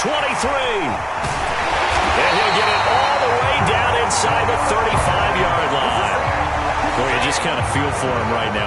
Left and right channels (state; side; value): identical; both; correlation 1.00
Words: And he'll get it all the way down inside the 35-yard line. Boy, you just kind of feel for him right